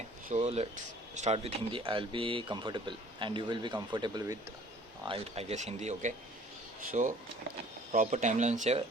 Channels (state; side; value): normal; both; correlation 0.52